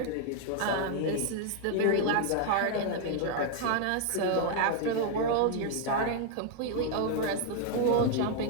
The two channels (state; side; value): different; both; correlation 0.00